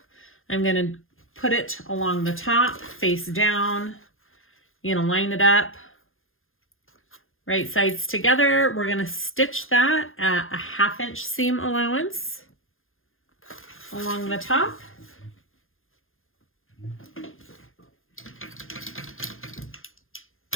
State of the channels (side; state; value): right; late; 0.60 ms